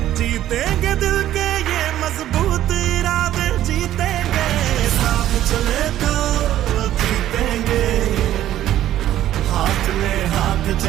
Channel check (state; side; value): quieter; left; 12.7 dB